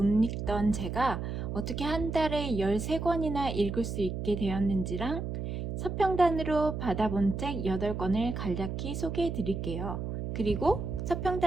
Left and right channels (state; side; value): noise; right; hum, 4 dB below the sound